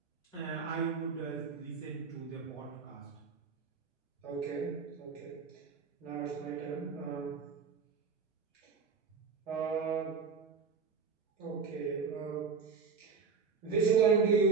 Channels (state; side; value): quieter; left; 5.4 dB